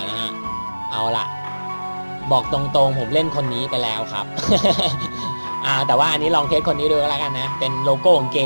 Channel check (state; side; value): inverted; both; correlation -1.00